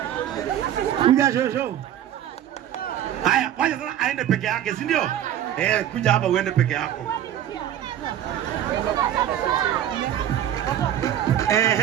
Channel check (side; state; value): left; quieter; 11.0 dB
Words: Kuja shosho. Haya, wacha sasa aende peke yake, si ndio? Kuja hapa uende peke yako.